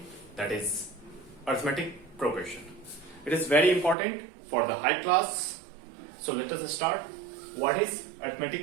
that is arithmetic progression. It is very important for the high class. So let us start. What is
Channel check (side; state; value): left; drops out; at 4.0 s